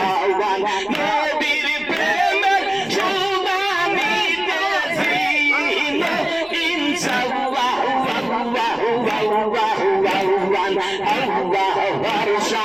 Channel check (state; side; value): noise; left; rumble, 29 dB below the sound